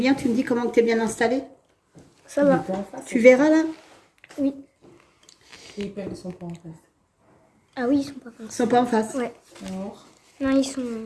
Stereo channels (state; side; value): identical; both; correlation 1.00